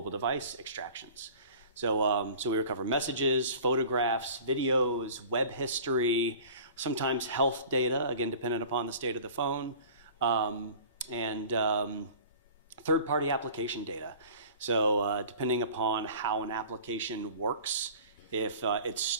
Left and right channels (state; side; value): inverted; both; correlation -0.44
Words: device extractions. So we recover messages, photographs, videos, web history, sometimes health data, again, dependent upon the state of the phone, and third-party application data. So depending upon how an application works, if it